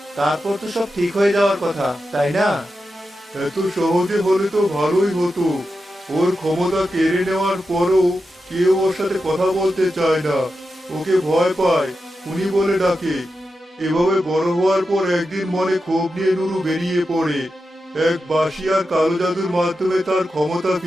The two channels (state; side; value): normal; both; correlation 0.90